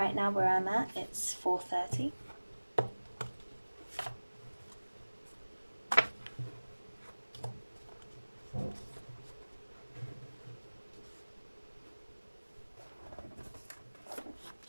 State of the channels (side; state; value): both; inverted; correlation -1.00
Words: now where I'm at, it's 4:30.